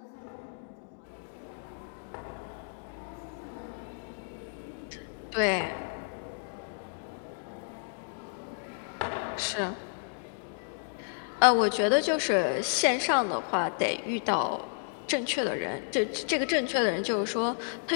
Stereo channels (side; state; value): right; silent; digital silence